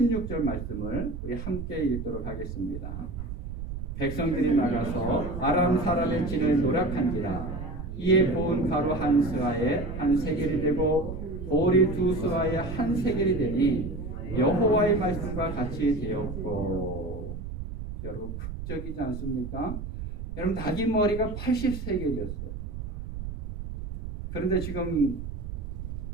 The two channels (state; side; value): noise; right; rumble, 7 dB below the sound